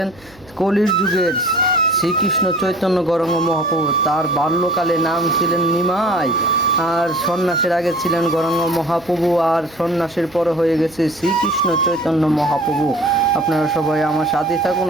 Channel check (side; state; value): right; noise; hum, 26 dB below the sound